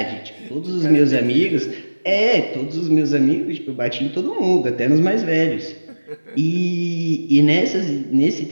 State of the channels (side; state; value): both; inverted; correlation -1.00